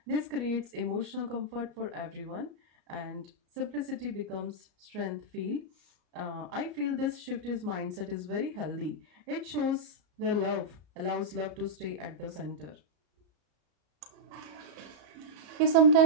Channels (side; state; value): left; late; 34 ms